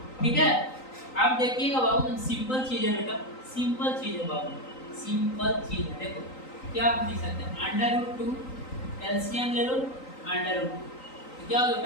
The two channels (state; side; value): late; right; 3.9 ms